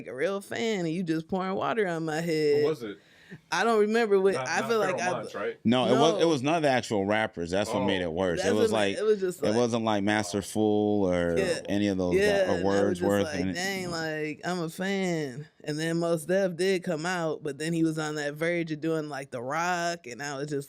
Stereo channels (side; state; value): both; identical; correlation 1.00